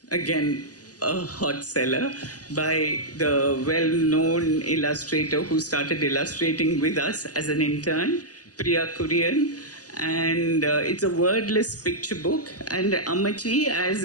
again, a hot seller by the well-known illustrator who started illustrating with us as an intern, Priya Kurian. And it's a wordless picture book. And Amachi, as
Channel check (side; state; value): right; late; 0.67 ms